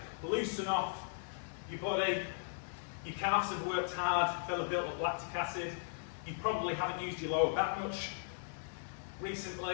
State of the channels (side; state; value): right; silent; 53 dB below the other